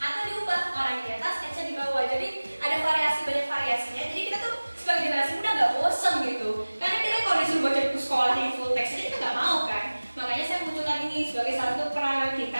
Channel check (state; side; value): inverted; both; correlation -1.00